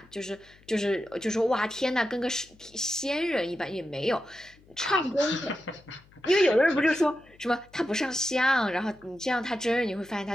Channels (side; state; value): left; noise; hum, 28 dB below the sound